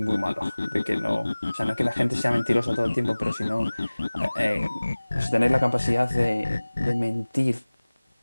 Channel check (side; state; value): both; inverted; correlation -1.00